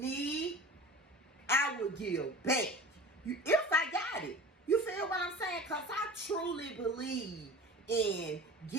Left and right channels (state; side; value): normal; both; correlation 0.38